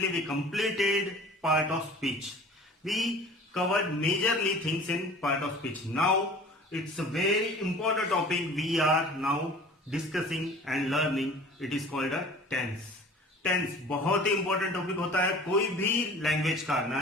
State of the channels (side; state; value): both; normal; correlation 0.44